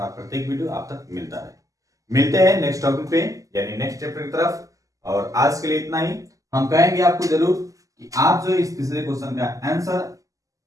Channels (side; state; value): left; late; 0.16 ms